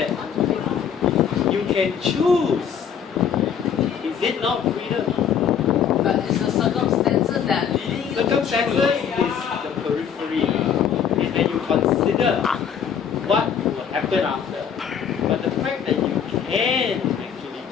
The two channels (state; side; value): quieter; right; 7.8 dB